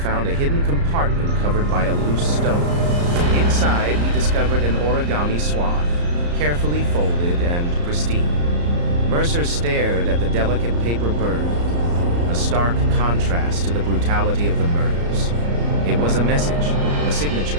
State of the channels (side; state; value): left; late; 34 ms